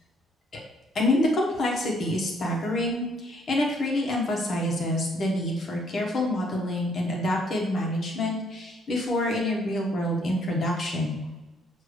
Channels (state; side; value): normal; both; correlation 0.66